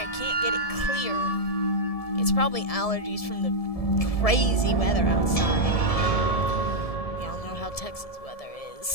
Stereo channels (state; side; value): late; right; 1.7 ms